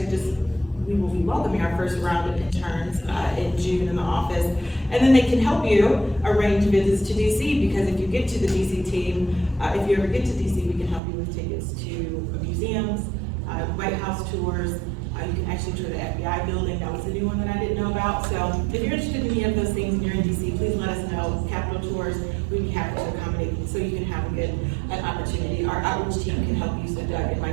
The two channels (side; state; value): left; drops out; at 11.0 s